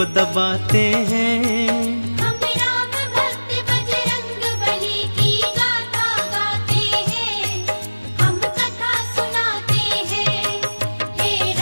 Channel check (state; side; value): inverted; both; correlation -1.00